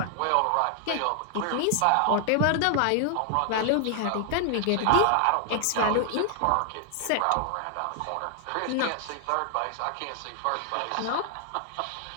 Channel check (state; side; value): different; both; correlation 0.00